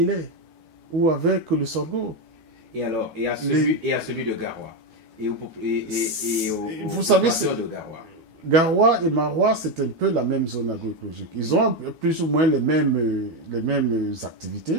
ou avec le sorgho? Et alors, et à celui de Garoua vous savez, de Garoua. Garoua et Maroua, c'est un peu la même zone agroécologique. Ils ont plus ou moins les mêmes activités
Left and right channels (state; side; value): late; left; 12 ms